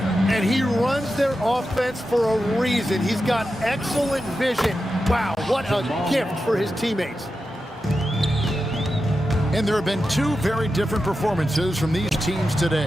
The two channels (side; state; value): both; normal; correlation 0.90